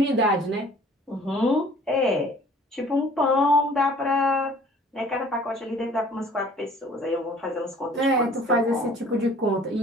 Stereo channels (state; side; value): normal; both; correlation 0.52